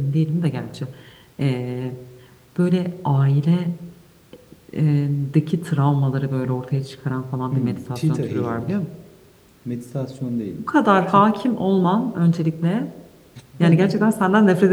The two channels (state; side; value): identical; both; correlation 1.00